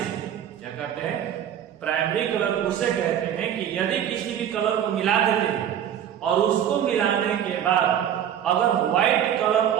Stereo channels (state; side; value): quieter; left; 9.8 dB